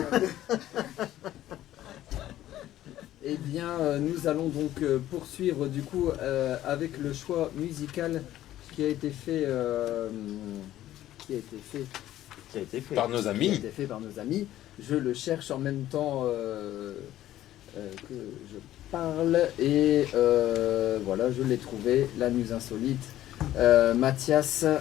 Eh bien, nous allons donc poursuivre du coup avec le choix musical qui a été fait, Par nos amis. Qui a été fait par nos amis. Je le cherche en même temps que je parle et voilà, je l'ai trouvé. La Muse Insolite, Mathias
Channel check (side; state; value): right; quieter; 13.5 dB